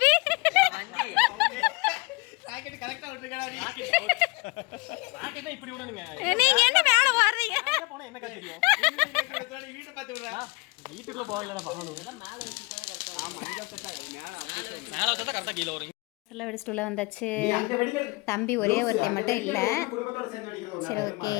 வண்டி. ராக்கெட் கரெக்ட்டா விட்டுக்கடா நீ. ராக்கெட்னா இப்படி விடணுங்க. நீங்க என்ன மேல வர்றீங்க? எங்க போனா என்ன தெரியும்? நீ வீட்டை பார்த்து விடுறா. வீட்டுக்குள்ள போகலடா பாக்கணும். எல்லாம் மேல வச்சுட்டா கரெக்டா. ஆமா இங்க செட்டா மேல வச்சா கரெக்டா கீழ வரும். சொல்ல வெடிச்சிட்டு உள்ள வந்தாச்சு. தம்பி ஒரே ஒருத்தி மட்டும் இல்லை. சரி ஓகே.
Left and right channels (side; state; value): right; quieter; 26.6 dB